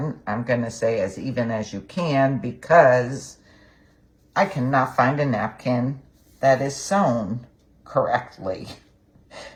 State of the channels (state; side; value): identical; both; correlation 1.00